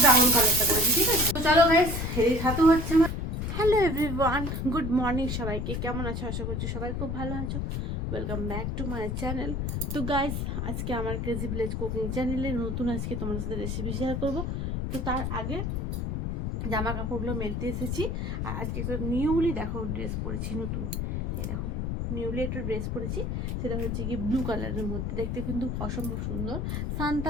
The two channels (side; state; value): left; noise; rumble, 2 dB below the sound